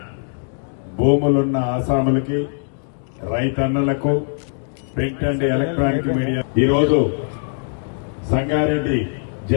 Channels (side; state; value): right; silent; digital silence